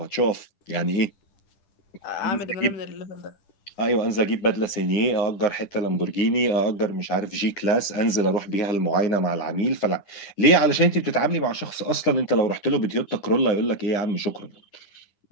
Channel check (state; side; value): late; right; 10 ms